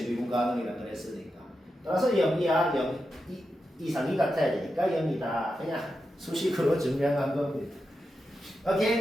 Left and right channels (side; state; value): both; normal; correlation 0.88